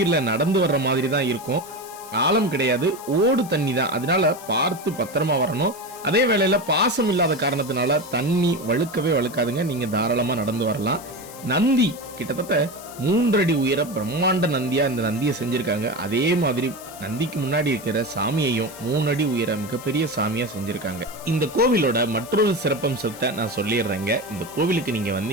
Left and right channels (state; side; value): noise; left; hiss, 17 dB below the sound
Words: நடந்து வர்ற மாதிரி தான் இருக்கும். ஆழம் கிடையாது, ஓடு தண்ணி தான். அதனால பார்த்து பத்திரமா வரணும். அதே வேளையில பாசம் இல்லாத காரணத்தினால தண்ணி வழுக்கவே வழுக்காதுங்க. நீங்க தாராளமா நடந்து வரலாம். நந்தி கிட்டத்தட்ட 3 அடி உயர பிரம்மாண்ட நந்தியா இந்த நந்தியை செஞ்சிருக்காங்க. அதே மாதிரி நந்திக்கு முன்னாடி இருக்கிற சாமியையும் 3 அடி உயர மிகப்பெரிய சாமியா செஞ்சிருக்காங்க. இந்த கோவிலோட மற்றொரு சிறப்பம்சத்தை நான் சொல்லிடுறேங்க. இந்த கோவிலுக்கு நீங்க